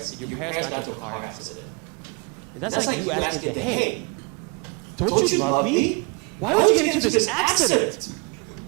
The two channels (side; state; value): left; quieter; 33.2 dB